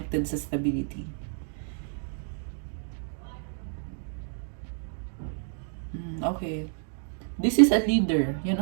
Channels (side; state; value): left; silent; 58 dB below the other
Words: sa stability. Okay. This is a leader. Yan